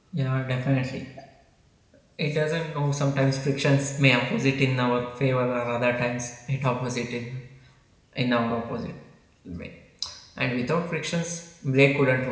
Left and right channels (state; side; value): identical; both; correlation 1.00